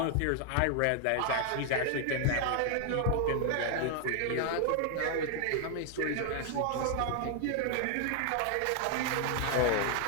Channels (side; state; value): both; different; correlation 0.00